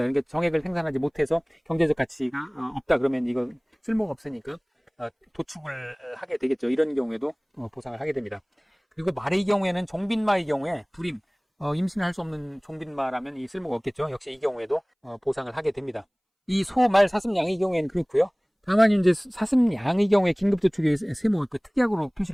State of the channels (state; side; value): identical; both; correlation 1.00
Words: 그러니까 정액을 생산하지 못해서 경제적 가치가 없다 그러면 이거 쓸모가 없으니까 도축을 하게 되겠죠. 이런 경우에도 보상을 하게 됩니다. 그리고 말의 경우에는 종빈마의 경우에 불임, 임신할 수 없는 종빈마라면 이 쓸모가 없겠죠. 역시 이 경우에도 보상을 하게 됩니다. 이 소, 말, 사슴, 양의 경우에는 그렇고요. 다만 이제 사슴, 양의 경우에 긴급도축의 세모 특약으로